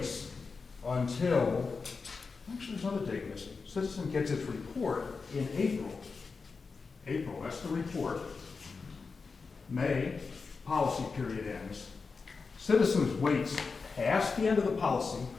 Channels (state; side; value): quieter; right; 4.7 dB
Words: until, actually there's another date missing. Citizen gets its report in April. April, that's the report. May, policy period ends. Citizens waits past the end of the policy